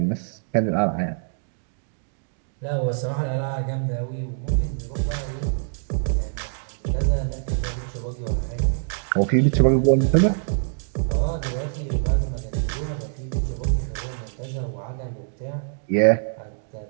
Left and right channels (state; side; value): silent; left; digital silence